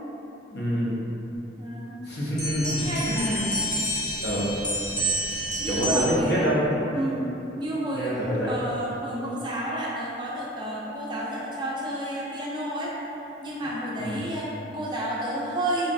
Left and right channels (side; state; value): both; normal; correlation 0.38